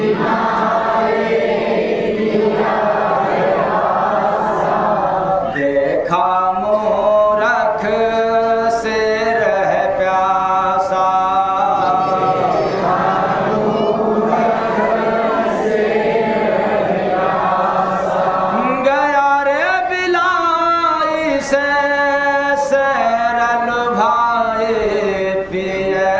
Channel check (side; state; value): right; noise; rumble, 24 dB below the sound